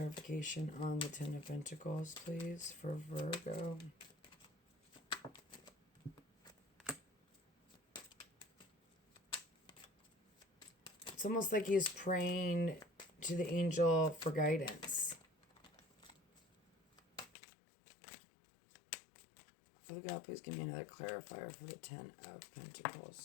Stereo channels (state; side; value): drops out; right; at 17.3 s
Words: on the Ten of Pentacles, please, for Virgo. It's almost like he's praying to the angel for guidance. Father God, please give me another clarifier for the Ten of